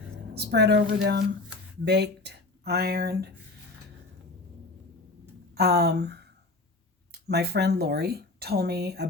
spread over them, baked, ironed. My friend Lori told me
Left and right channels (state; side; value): quieter; right; 3.2 dB